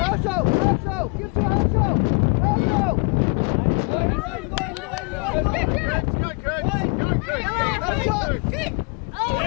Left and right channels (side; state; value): right; quieter; 33.1 dB